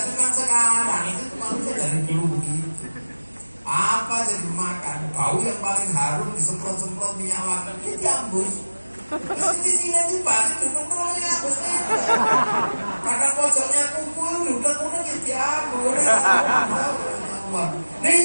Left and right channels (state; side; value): inverted; both; correlation -1.00